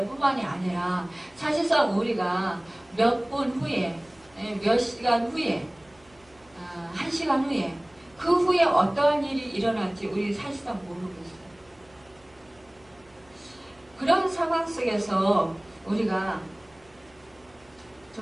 뿐만이 아니라 사실상 우리가 몇 분 후에 몇 시간 후에 1시간 후에 그 후에 어떠한 일이 일어날지 우리 사실상 모르고 있어요. 그런 상황 속에서 우리가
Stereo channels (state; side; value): noise; right; hum, 29 dB below the sound